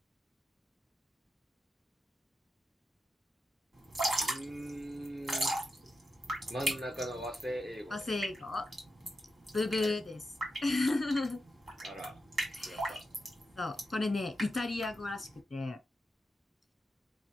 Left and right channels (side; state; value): both; normal; correlation 0.89